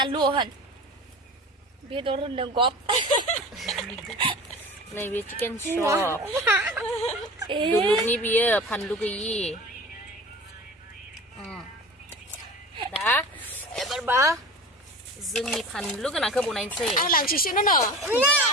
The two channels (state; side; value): normal; both; correlation 0.35